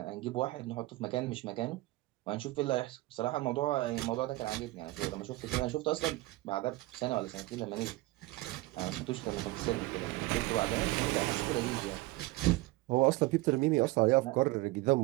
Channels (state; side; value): quieter; left; 20.0 dB